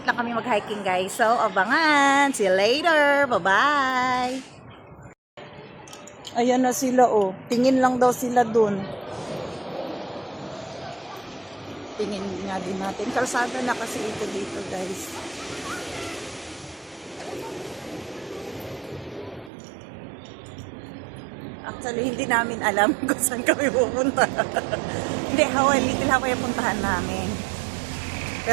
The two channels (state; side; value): drops out; left; at 19.5 s